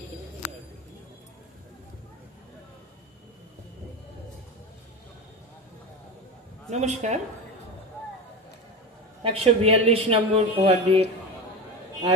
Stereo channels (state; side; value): normal; both; correlation 0.26